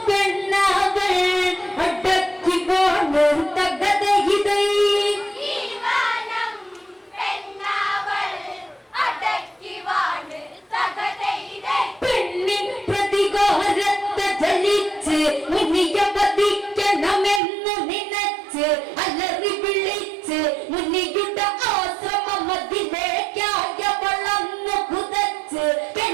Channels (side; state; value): left; drops out; at 17.4 s